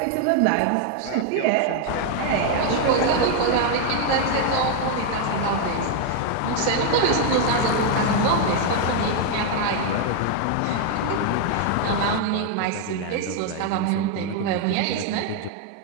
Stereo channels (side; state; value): both; different; correlation 0.00